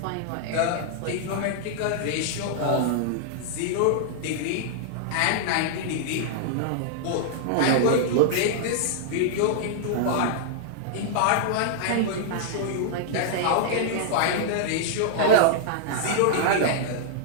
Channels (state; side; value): different; both; correlation -0.01